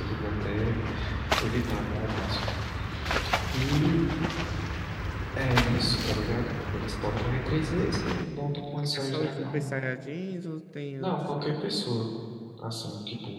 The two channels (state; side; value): identical; both; correlation 1.00